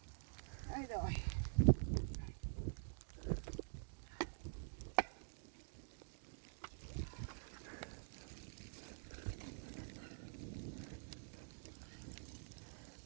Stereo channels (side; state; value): left; silent; digital silence